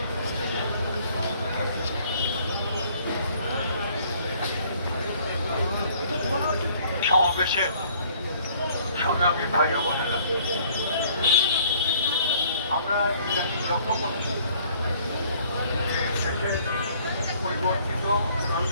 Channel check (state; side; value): inverted; both; correlation -0.59